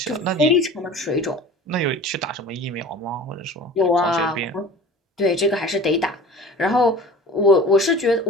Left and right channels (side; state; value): both; normal; correlation 0.41